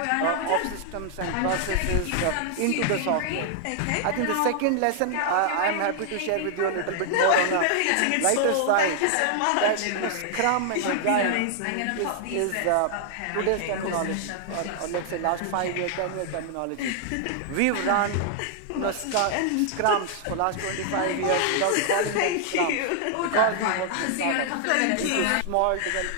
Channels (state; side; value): different; both; correlation 0.00